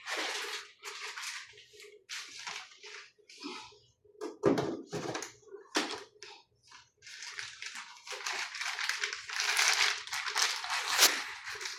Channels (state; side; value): identical; both; correlation 1.00